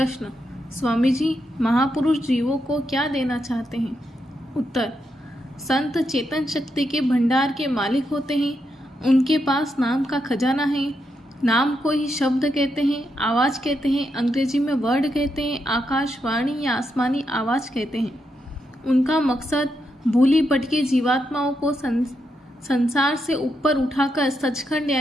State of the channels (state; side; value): normal; both; correlation 0.82